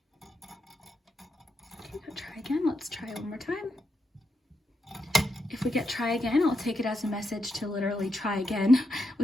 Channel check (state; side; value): normal; both; correlation 0.84